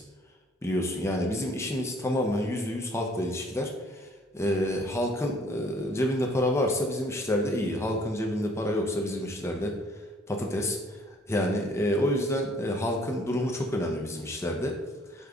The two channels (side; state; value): both; normal; correlation 0.59